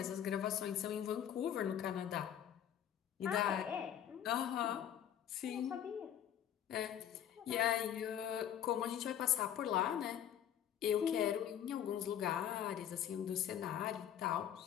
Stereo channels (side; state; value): right; quieter; 10.0 dB